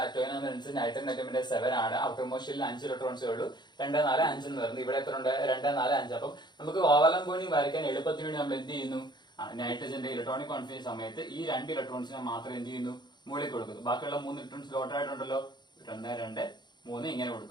നമ്പർ അനുസരിച്ച് നൈട്രജൻ അറ്റോമിന്റെ 7 ആണ്. ഔട്ടർ മോസ്റ്റിൽ 5 ഇലക്ട്രോൺസേ ഉള്ളൂ. 2, 4, 5 എന്ന് പറയുന്നത്. ഇവിടെ എത്ര ഉണ്ട്? 2, 4, 5. അപ്പം നമുക്ക് കോവാലന്റ് ബോണ്ടിങ് വരയ്ക്കാൻ എളുപ്പത്തിന് വേണ്ടി നമ്മൾ എന്ത് ചെയ്യുന്നു? നൈട്രജന്റെ ഇലക്ട്രോണിക് കോൺഫിഗറേഷൻ സമയത്ത് ഈ 2 ഇലക്ട്രോൺസിനെ മാത്രം എന്ത് ചെയ്യുന്നു? മുകളിൽ കൊടുക്കുന്നു. ബാക്കിയുള്ള 3 ഇലക്ട്രോൺസ് ലോട്ടർ ആയിട്ടുണ്ടല്ലോ. 1, 2, 3 ഇങ്ങനെ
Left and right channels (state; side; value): late; right; 0.21 ms